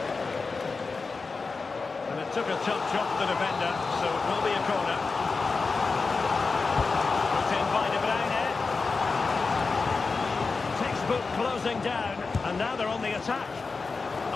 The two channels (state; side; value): quieter; right; 4.3 dB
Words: Took a touch off the defender, so it will be a corner. Put in by De Bruyne. Textbook closing down, and now they're on the attack.